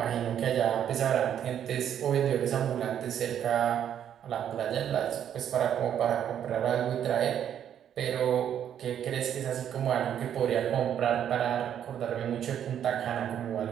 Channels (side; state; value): left; quieter; 9.6 dB